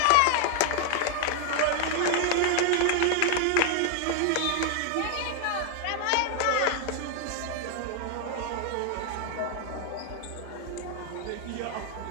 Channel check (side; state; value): both; different; correlation 0.00